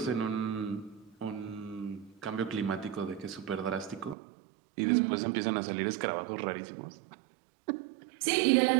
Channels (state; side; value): drops out; left; at 4.2 s